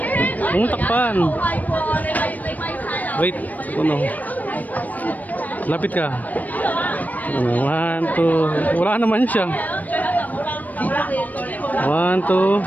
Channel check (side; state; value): right; late; 0.079 ms